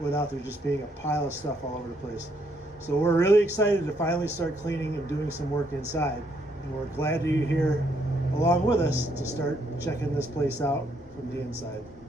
there just being a pile of stuff all over the place. So we're really excited to finally start cleaning and doing some work inside. And we're glad that you're here along with us to start checking this place out from the inside.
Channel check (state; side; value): normal; both; correlation 0.72